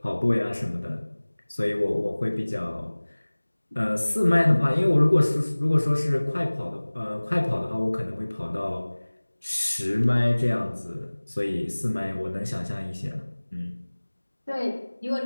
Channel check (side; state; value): both; inverted; correlation -1.00